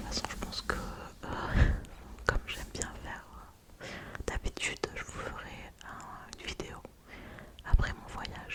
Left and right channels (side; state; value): both; identical; correlation 1.00